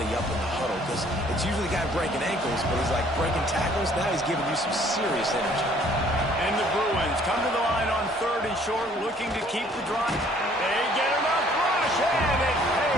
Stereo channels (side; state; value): both; normal; correlation 0.59